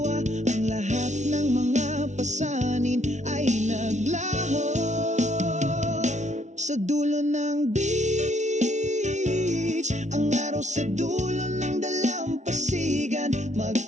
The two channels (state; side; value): late; left; 0.34 ms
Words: Ang lahat pasanin ay naglaho. Sa dulo ng beach, ang araw sa dulo ng dalampasigan,